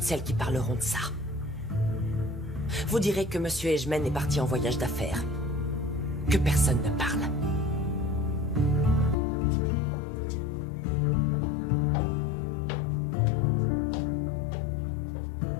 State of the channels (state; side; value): drops out; right; at 9.2 s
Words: celles qui parleront de ça. Vous direz que Monsieur Ejmen est parti en voyage d'affaires. Que personne ne parle.